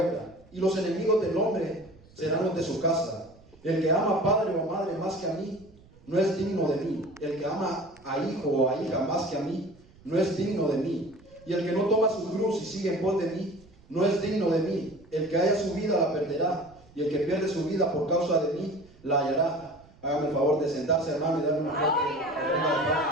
Y los enemigos del hombre serán los de su casa. El que ama a padre o madre más que a mí no es digno de mí. El que ama a hijo o a hija más que a mí no es digno de mí. Y el que no toma su cruz y sigue en pos de mí no es digno de mí. El que haya su vida la perderá, y el que pierde su vida por causa de mí la hallará. Hágame el favor de sentarse, hermano, y darle una fuerte ofrenda de palmas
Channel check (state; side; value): noise; right; rumble, 26 dB below the sound